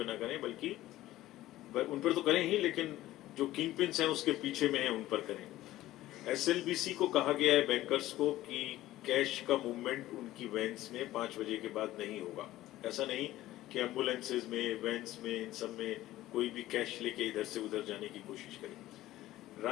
ना करें, बल्कि उन पर तो करें ही, लेकिन जो किंग पिन्स हैं उसके पीछे में हैं उन पर करें। एसएलबीसी को कहा गया है बैंकर्स को कि कैश का मूवमेंट उनकी वैन्स में 5 बजे के बाद नहीं होगा। ऐसा नहीं कि एम्बुलेंसेज में, वैन्स में, इन सब में कोई भी कैश लेके इधर से उधर जाने की कोशिश करें।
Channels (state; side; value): quieter; right; 15.5 dB